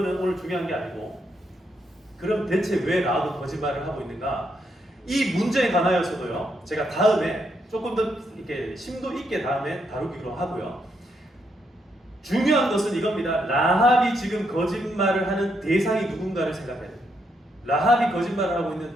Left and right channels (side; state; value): both; normal; correlation 0.78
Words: 오늘 중요한 게 아니고, 그럼 대체 왜 라합은 거짓말을 하고 있는가? 이 문제에 관하여서도요, 제가 다음에 조금 더 이렇게 심도 있게 다음에 다루기로 하고요. 중요한 것은 이겁니다. 라합이 지금 거짓말을 하는 대상이 누군가를 생각해야 돼요. 라합이 거짓말을 하고 있는